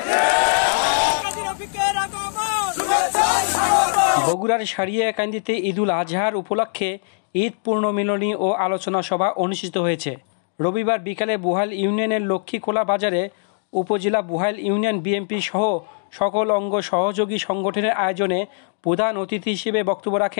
বগুড়ার সারিয়াকান্দিতে ঈদুল আজহার উপলক্ষে ঈদ পূর্ণমিলনী ও আলোচনা সভা অনুষ্ঠিত হয়েছে। রবিবার বিকালে বুহাইল ইউনিয়নের লক্ষ্মীখোলা বাজারে উপজেলা বুহাইল ইউনিয়ন বিএনপি সহ সকল অঙ্গ সহযোগী সংগঠনের আয়োজনে প্রধান অতিথি হিসেবে বক্তব্য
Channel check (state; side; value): silent; right; digital silence